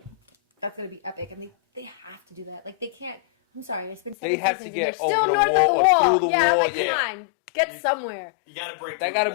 that's going to be epic, and they have to do that. Like they can't. I'm sorry, it's been. They 7 have to seasons, get they're still over the north wall of or through the yeah, wall. like, Yeah. come on, get You- somewhere. You gotta break through That gotta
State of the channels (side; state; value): right; drops out; at 4.2 s